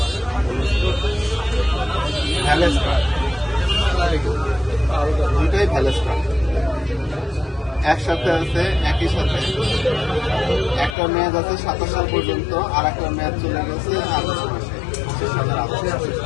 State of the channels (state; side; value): drops out; right; at 11.0 s